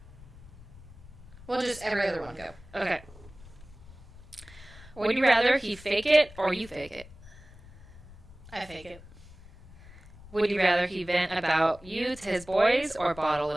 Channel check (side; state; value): left; noise; rumble, 20 dB below the sound